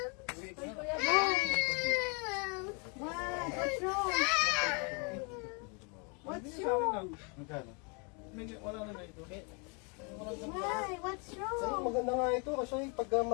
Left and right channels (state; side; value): quieter; right; 34.6 dB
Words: Kuya, bye. What? What's wrong? What's wrong? Magkano? Wala na na ito. Why? What's Sa'yo, wrong? maganda nga ito kasi pagka